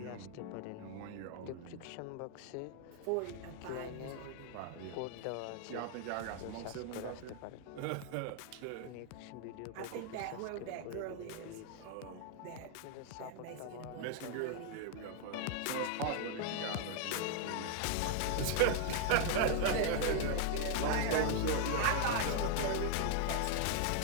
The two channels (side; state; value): both; different; correlation 0.00